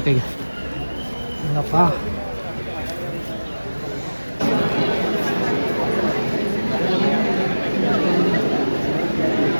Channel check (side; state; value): both; inverted; correlation -1.00